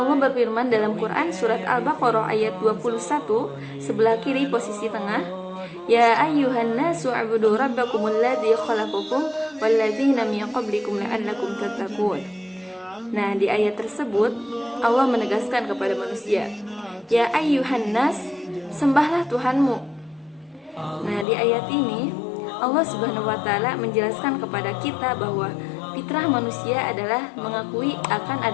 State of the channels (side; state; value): right; drops out; at 21.2 s